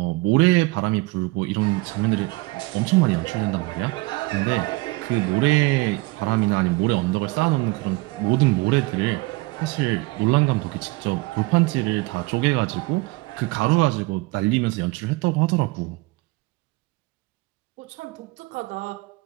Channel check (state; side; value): quieter; left; 23.0 dB